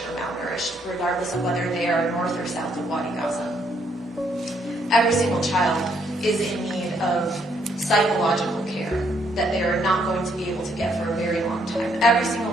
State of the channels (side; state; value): both; normal; correlation 0.71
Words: malnourished, regardless of whether they are north or south of Wadi Gaza. Every single child is in need of psychological care that they are not going to be able to get for a very long time. Every